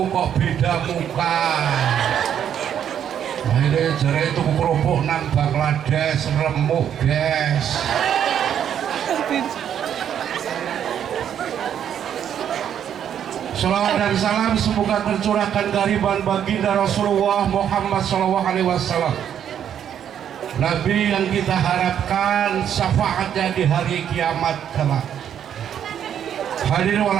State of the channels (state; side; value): quieter; left; 9.3 dB